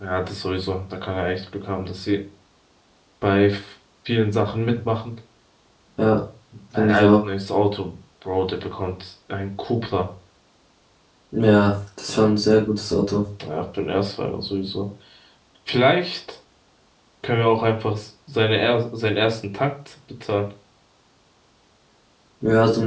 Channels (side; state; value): both; identical; correlation 1.00